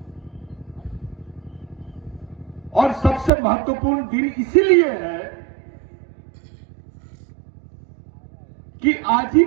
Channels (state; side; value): drops out; left; at 3.3 s